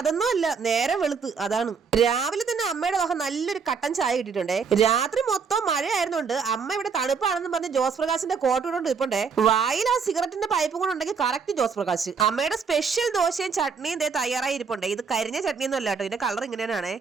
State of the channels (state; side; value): quieter; left; 5.7 dB